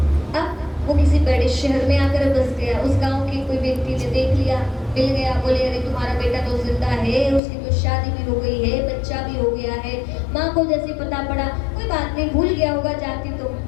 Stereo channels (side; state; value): right; drops out; at 7.4 s